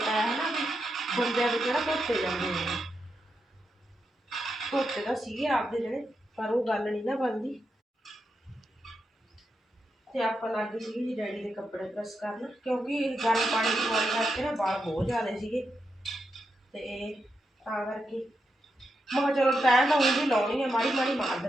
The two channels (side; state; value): both; normal; correlation 0.85